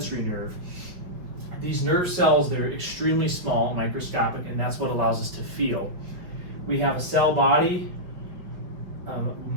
nerve, these nerve cells, they're extremely small, microscopic, and that's what allows us to feel. We have a cell body,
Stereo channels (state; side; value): late; left; 5.5 ms